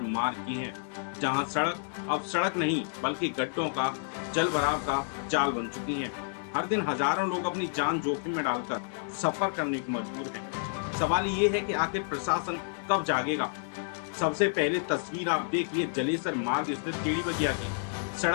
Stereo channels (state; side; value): silent; right; digital silence